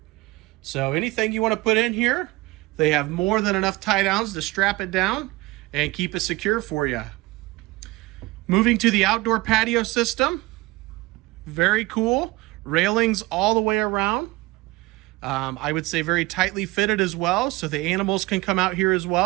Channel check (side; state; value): left; quieter; 21.4 dB